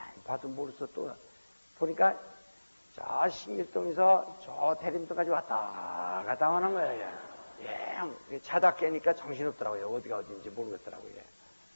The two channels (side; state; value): both; inverted; correlation -1.00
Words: 봐도 모르겠어 또 보니까 저 신길동에서 저 대림도까지 왔다 갔다 하는 거예요. 예, 자다 깨니까 정신없더라고요. 어디가 어딘지 모르겠더라고요.